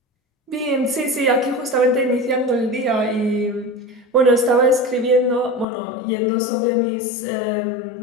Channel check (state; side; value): drops out; right; at 5.7 s